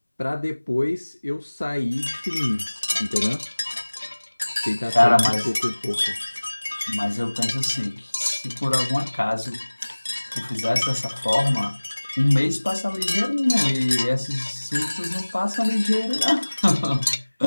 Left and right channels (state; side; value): inverted; both; correlation -1.00